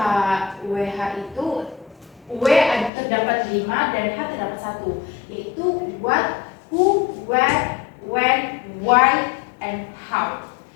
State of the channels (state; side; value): drops out; right; at 2.9 s